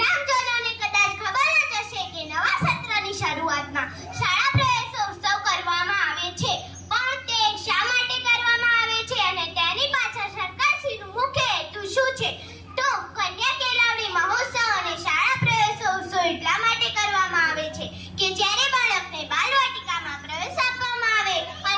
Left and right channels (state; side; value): identical; both; correlation 1.00